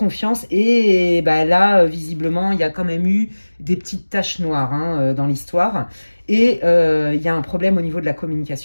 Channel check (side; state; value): both; inverted; correlation -1.00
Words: Et bah, là, visiblement, il y a quand même eu des petites taches noires hein, dans l'histoire. Et il y a un problème au niveau de la